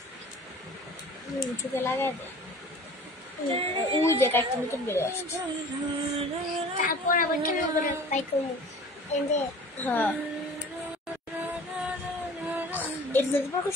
চোখে লাগাই দে। ওই দেখ একটা নতুন বেরো আসছে। তারপর আবার কেন করে পাই করবো এনে হ্যাঁ এটা যদি পর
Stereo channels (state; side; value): normal; both; correlation 0.44